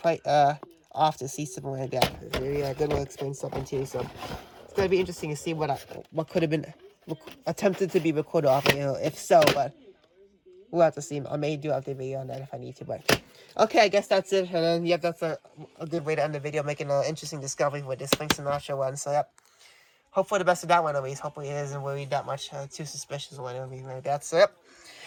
off to see something like that. Maybe a good way to explain something too. So it's gonna be interesting to see what could have been attempted to be recorded off, if so. But we'll have to see. I may do update video on that if I need to. But okay, I guess that's it. And then yep, that's a good way to end the video, making an interesting discovery with this Frank Sinatra one. So yep. Hopefully the best of that one at least. Hopefully it isn't really that much too suspicious or anything like that. So yep.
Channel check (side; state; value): both; identical; correlation 1.00